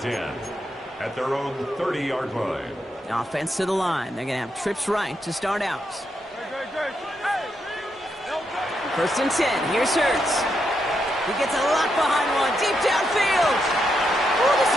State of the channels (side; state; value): both; normal; correlation 0.81